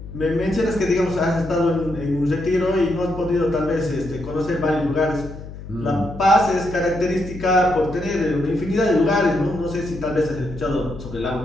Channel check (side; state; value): left; noise; hum, 12 dB below the sound